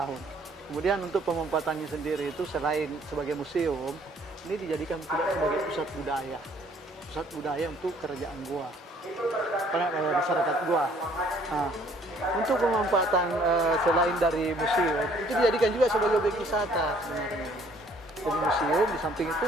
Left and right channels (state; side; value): normal; both; correlation 0.60